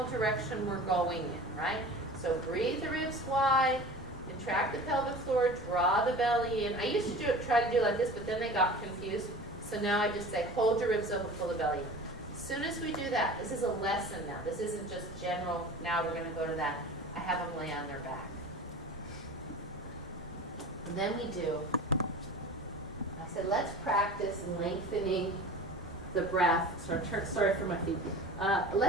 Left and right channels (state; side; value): normal; both; correlation 0.37